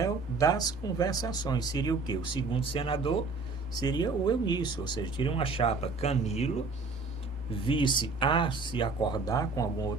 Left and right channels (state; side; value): quieter; left; 3.9 dB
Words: das conversações. Seria o quê? O segundo senador seria o Eunício, ou seja, teria uma chapa Camilo, vice a se acordar com alguma